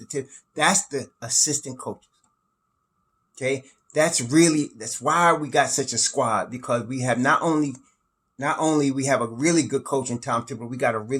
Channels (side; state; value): both; identical; correlation 1.00